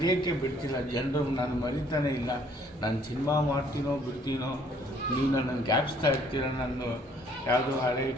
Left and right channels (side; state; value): both; normal; correlation 0.61